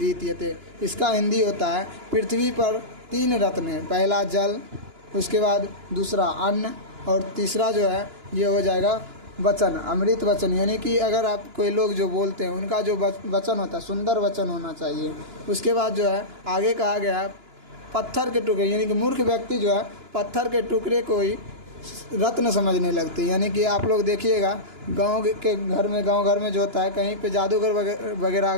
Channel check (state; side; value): late; left; 2.9 ms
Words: इसका हिंदी होता है, पृथ्वी पर 3 रत्न है, पहला जल, उसके बाद दूसरा अन्न और तीसरा जो है ये हो जाएगा वचन, अमृत वचन। यानी कि अगर आप कोई लोग जो बोलते हैं उनका जो वचन होता है सुंदर वचन होना चाहिए। उसके बाद जो है आगे कहा गया है पत्थर के टुकड़े, यानी कि मूर्ख व्यक्ति जो है पत्थर के टुकड़े को ही रत्न समझने लगते हैं। यानी कि आप लोग देखिएगा गांव घर में जो होता है, कहीं पे जादूगर वगैरह